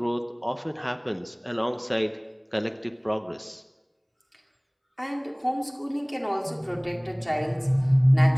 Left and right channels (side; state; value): both; identical; correlation 1.00